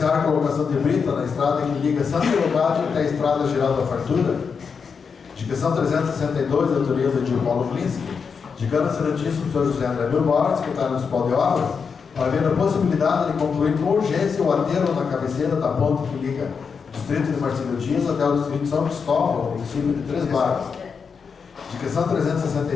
a colocação de brita na estrada que liga Santa Leocádia até a Estrada Geral da Fartura. Indicação 362, de autoria do Edir Paulo Glinski, indicando o excelentíssimo senhor José André Bilbao, secretário municipal de obras, para ver a possibilidade de concluir com urgência o aterro na cabeceira da ponte que liga o distrito de Marcílio Dias até o distrito de São Cristóvão, município de Três Barras. Indicação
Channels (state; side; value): quieter; right; 5.8 dB